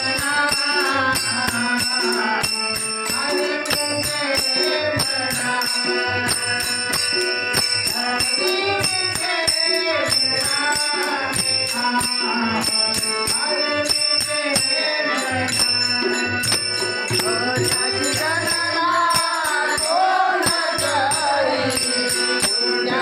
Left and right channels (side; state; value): both; identical; correlation 1.00